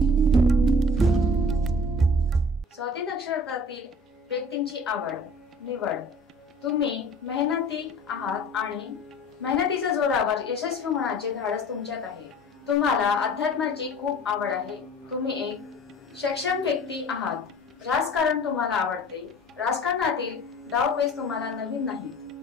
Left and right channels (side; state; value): both; normal; correlation 0.44